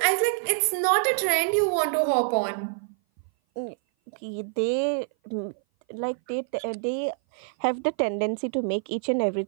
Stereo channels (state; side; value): silent; left; 57 dB below the other